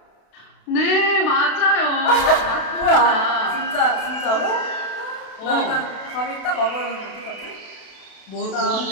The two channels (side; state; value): right; late; 32 ms